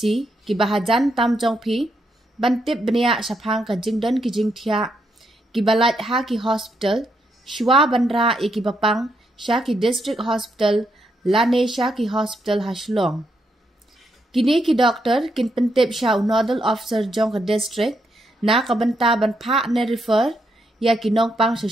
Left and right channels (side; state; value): both; normal; correlation 0.79